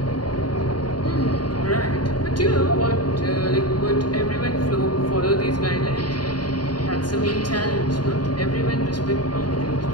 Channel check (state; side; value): late; right; 0.70 ms